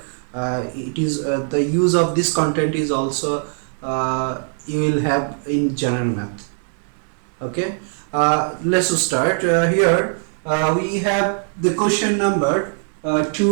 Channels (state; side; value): silent; left; 65 dB below the other